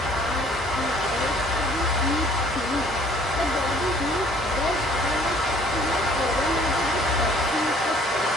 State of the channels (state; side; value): normal; both; correlation 0.57